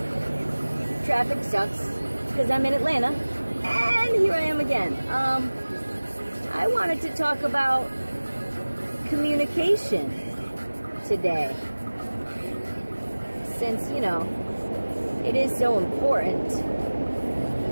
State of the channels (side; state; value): both; inverted; correlation -1.00